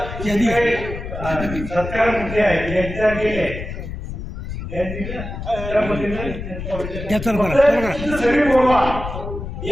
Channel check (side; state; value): left; noise; rumble, 8 dB below the sound